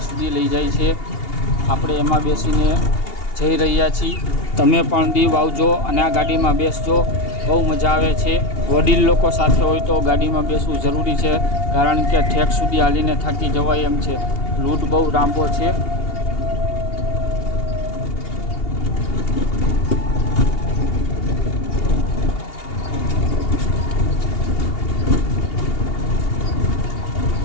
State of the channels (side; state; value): right; late; 2.8 ms